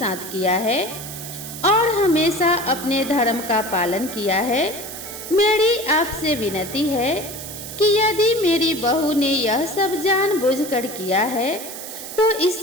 किया है और हमेशा अपने धर्म का पालन किया है। मेरी आपसे विनती है कि यदि मेरी बहू ने यह सब जानबूझकर किया है तो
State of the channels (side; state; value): right; noise; hiss, 10 dB below the sound